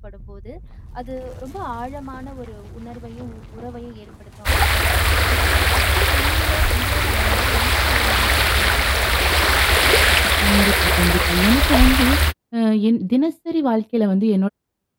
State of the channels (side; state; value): both; identical; correlation 1.00